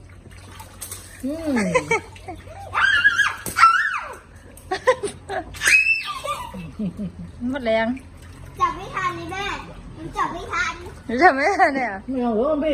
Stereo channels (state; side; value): identical; both; correlation 1.00